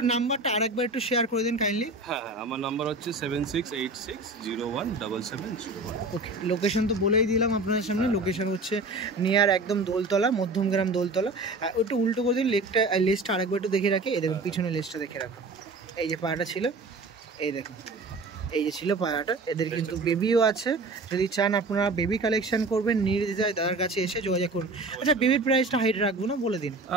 নাম্বারটা আরেকবার একটু শেয়ার করে দেন কাইন্ডলি। হ্যাঁ, আমার নাম্বার হচ্ছে 7686017701। ওকে, লোকেশন তো বলেই দিলাম আপনার সামনে। লোকেশন হচ্ছে নিয়ার একদম দোলতলা, মধ্যমগ্রাম দোলতলা। একটু উল্টো করে দিন লেজটা আরেকবার একটু দেখে রাখে। এই দেখুন পিছনে লেজটা দেখে রাখো। এই যে পায়রাটা ছিল, এই দেখুন এই যে ছিল পায়রাটা। এদের কিন্তু বেবিও আছে, যদি চান আপনারা বেবি কালেকশন করবেন নির্দ্বিধায় দাদার কাছে এসে যোগাযোগ করুন। আচ্ছা বেবির প্রাইসটা হাইট রাখবো না, বলে দিন।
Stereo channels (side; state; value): left; quieter; 3.1 dB